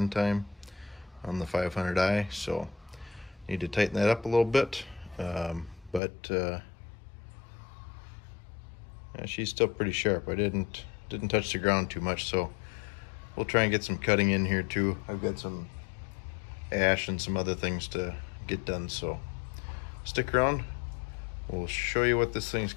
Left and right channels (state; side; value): drops out; right; at 6.0 s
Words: on the 500i. So need to tighten that up a little bit. Yeah, she's still pretty sharp. I didn't touch the ground too much, so we'll try and get some cutting in here too. I've got some ash and some other things to get done, so stick around. We'll show you what this thing's